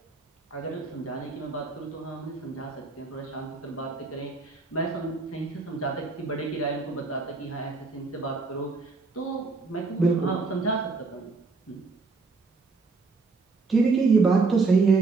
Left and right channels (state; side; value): quieter; left; 4.1 dB